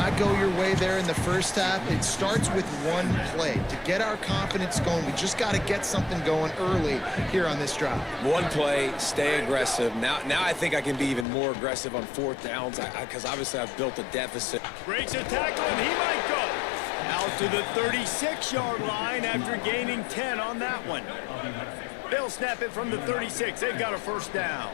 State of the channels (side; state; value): right; drops out; at 11.2 s